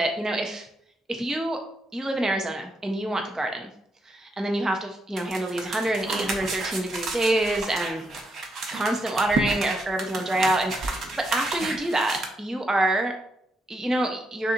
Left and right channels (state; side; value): normal; both; correlation 0.80